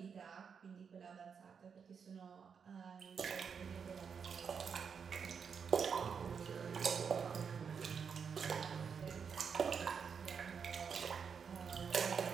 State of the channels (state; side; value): quieter; left; 6.5 dB